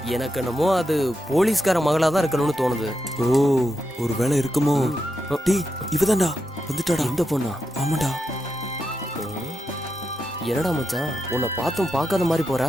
எனக்கு என்னமோ அது போலீஸ்கார மகளா தான் இருக்கணும்னு தோணுது. ஓ, ஒரு வேலை இருக்குமோ? டேய், இவதான்டா வந்துட்டாடா. இந்த பொண்ணா? ஆமாண்டா. என்னடா மச்சான், உன்னை பார்த்தும் பார்க்காத மாதிரி போற.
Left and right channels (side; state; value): both; normal; correlation 0.86